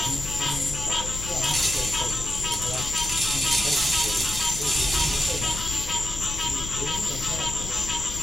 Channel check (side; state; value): left; noise; rumble, 9 dB below the sound